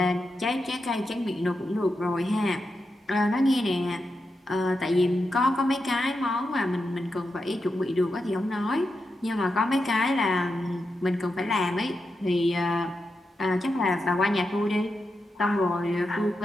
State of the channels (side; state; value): both; normal; correlation 0.87